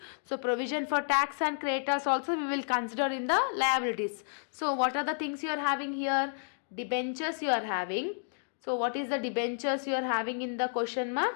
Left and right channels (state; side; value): silent; right; digital silence